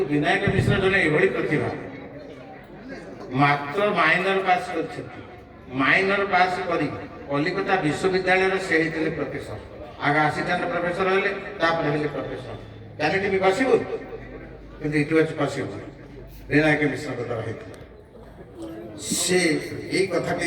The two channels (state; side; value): identical; both; correlation 1.00